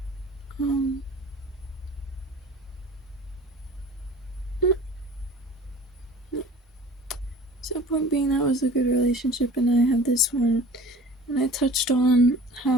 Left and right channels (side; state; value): both; normal; correlation 0.44